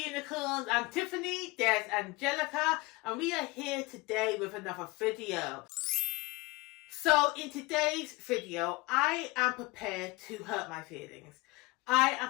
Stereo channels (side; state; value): right; quieter; 23.5 dB